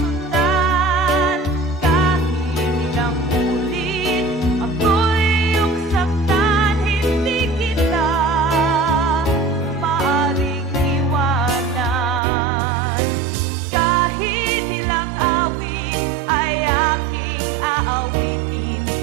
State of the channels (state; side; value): drops out; left; at 12.2 s